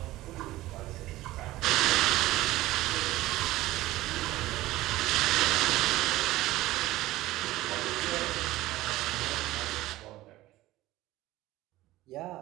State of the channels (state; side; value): quieter; left; 17.0 dB